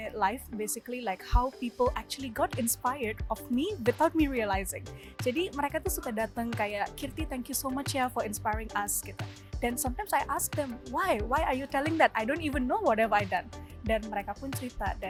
life basically like how people actually got inspired of me without me realizing. Jadi mereka tuh suka datang kayak, Kirti, thank you so much ya for inspiring us gitu. Dan sometimes I ask them, why are you telling that? I don't even know what have I done. Dan mereka pun cerita,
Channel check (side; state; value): both; identical; correlation 1.00